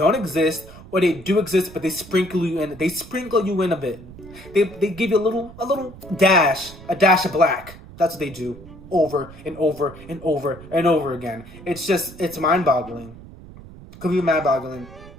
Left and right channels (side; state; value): right; noise; rumble, 18 dB below the sound